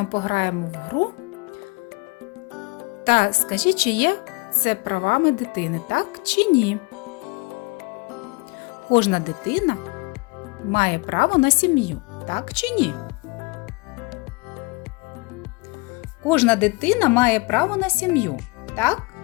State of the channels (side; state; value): right; quieter; 27.0 dB